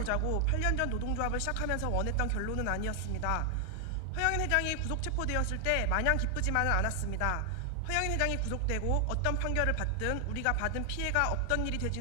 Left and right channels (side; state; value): both; different; correlation 0.00